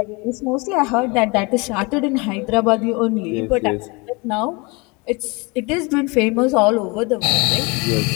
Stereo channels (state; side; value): quieter; right; 27.3 dB